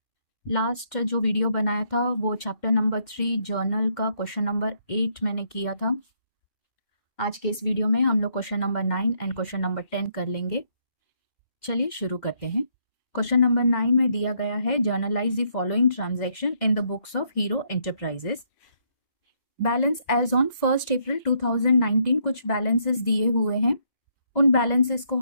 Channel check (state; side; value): late; right; 2.1 ms